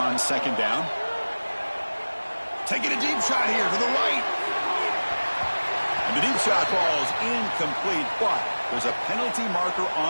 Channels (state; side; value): inverted; both; correlation -1.00